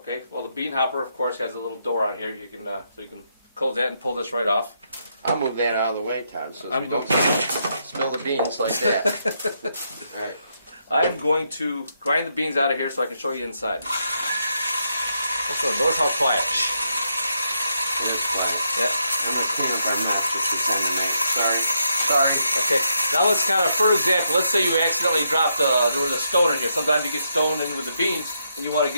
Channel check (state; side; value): inverted; both; correlation -0.79